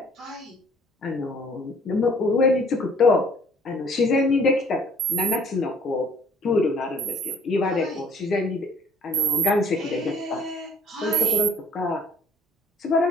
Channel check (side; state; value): both; normal; correlation 0.58